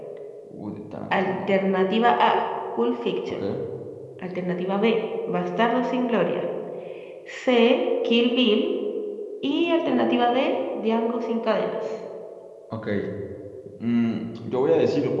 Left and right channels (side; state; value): both; identical; correlation 1.00